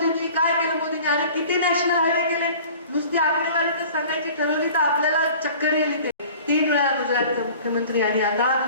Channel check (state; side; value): inverted; both; correlation -0.45